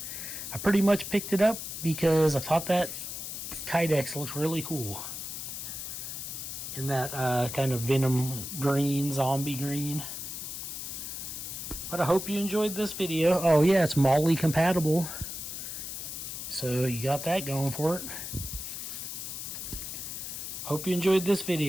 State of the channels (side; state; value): left; noise; hiss, 7 dB below the sound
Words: I pretty much picked it up because I thought that Kydex looks really cool. In that kind of Venom Green, zombie green. But I hope you enjoyed this video. Oh yeah, it's molle compatible. So you got that going for it. Hope you enjoyed this